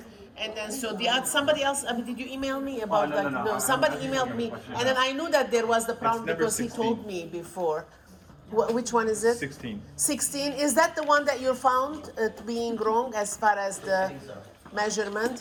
And then so somebody else. I mean, did you email me about No. Somebody emailed me, and then I knew that there was the problem because 16. he told me before. Which one is it? 16. 16. Is that the one that you found being wrong as far as the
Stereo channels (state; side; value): identical; both; correlation 1.00